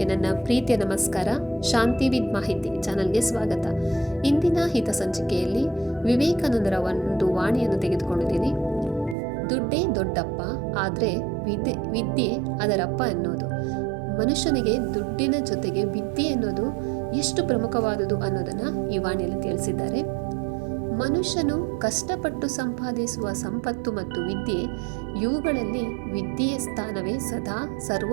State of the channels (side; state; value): left; drops out; at 9.2 s